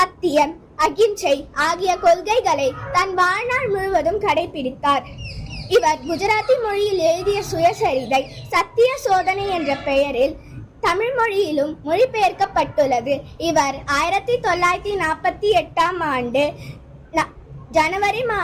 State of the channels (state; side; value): identical; both; correlation 1.00